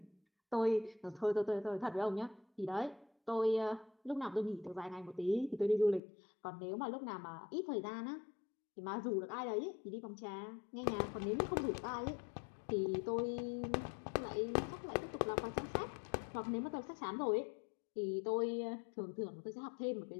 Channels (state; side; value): drops out; right; at 6.0 s